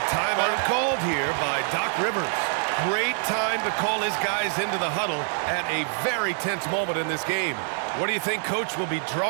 timeout called here by Doc Rivers. Great time to call his guys into the huddle at a very tense moment in this game. What do you think Coach will be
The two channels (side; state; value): left; silent; 61 dB below the other